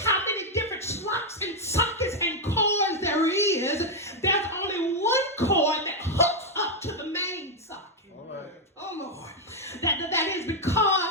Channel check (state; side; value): normal; both; correlation 0.01